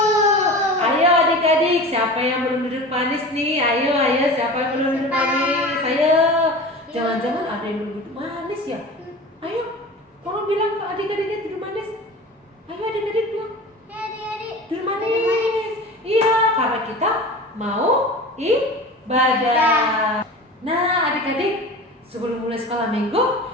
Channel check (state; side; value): normal; both; correlation 0.35